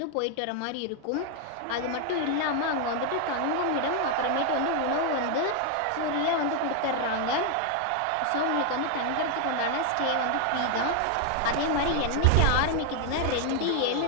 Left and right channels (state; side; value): different; both; correlation 0.00